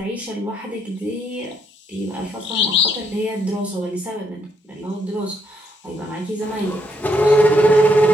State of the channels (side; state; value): both; normal; correlation 0.74